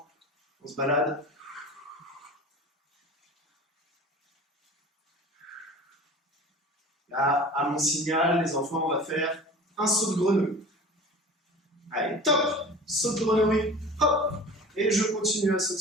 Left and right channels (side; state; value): both; normal; correlation 0.38